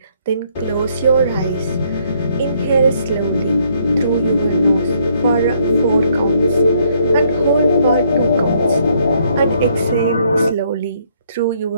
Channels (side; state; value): both; inverted; correlation -0.69